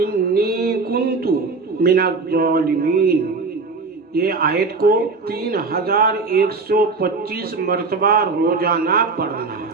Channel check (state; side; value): quieter; left; 4.1 dB